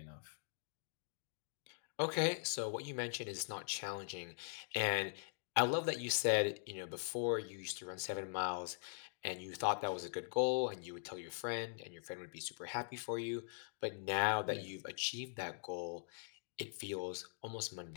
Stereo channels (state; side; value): silent; right; digital silence